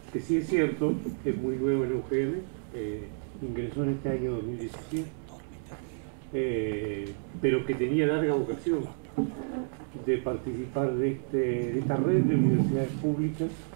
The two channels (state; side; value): silent; left; digital silence